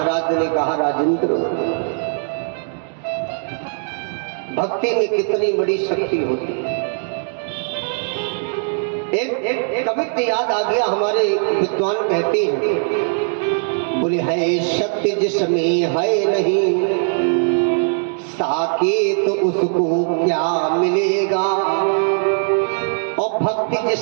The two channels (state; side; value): silent; left; 65 dB below the other